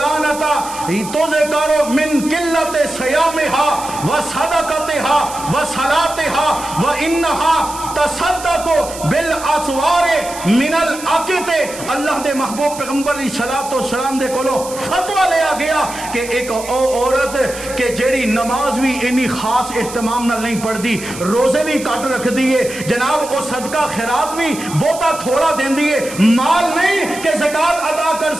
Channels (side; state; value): right; noise; hiss, 13 dB below the sound